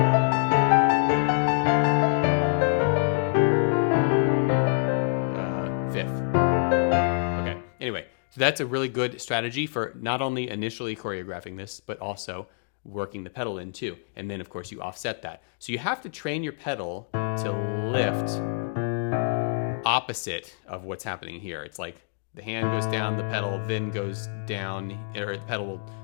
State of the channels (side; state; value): right; silent; digital silence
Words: Fifth. Okay, anyway, so that's a really good strategy for not only initially choreographing this, but also working the pedal in too. And then of course you offset that. So you have to train your pedal to lift opposite of what's happening here. It's like the hand goes down, the pedal then goes down, or the pedal will